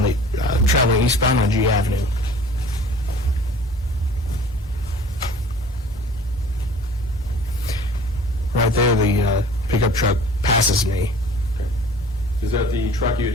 the traveling eastbound on G Avenue. right there, the pickup truck passes me. Is that the truck you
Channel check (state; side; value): normal; both; correlation 0.47